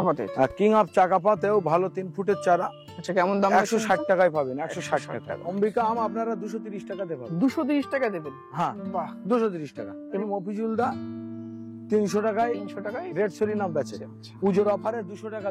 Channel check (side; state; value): both; identical; correlation 1.00